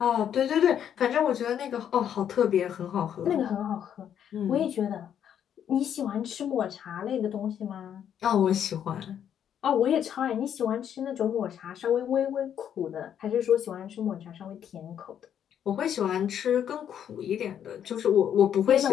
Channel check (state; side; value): quieter; right; 9.2 dB